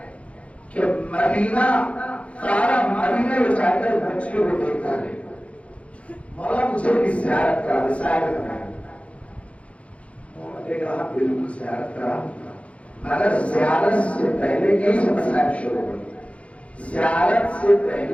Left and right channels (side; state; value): right; late; 0.063 ms